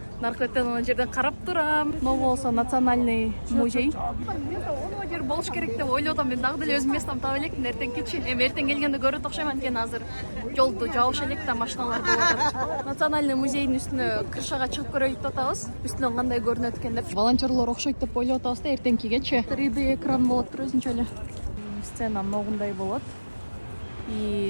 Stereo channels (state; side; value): inverted; both; correlation -1.00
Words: наркотен ана жерден карап турам. Могу болсо национальный музей. Оно жер болуш керек деп ойлоп атам. Мен дагы деле өзүм местам таап элекмин эртең кечи. Эми эртең келгенде көрөт окшойм, анткени азыр жолду жабыш элек да, машиналар болуп атат. Национальный музейдин үстүнө крышага чыгып көрөйүк деп атабыз. Үстүнөн кандай көрүнөт экен деп. Волонтерлор окшойт деп ойлоп атабыз да, эртеңкигечи 3D экран болот өзүнчө эле. Сцена могундай болот.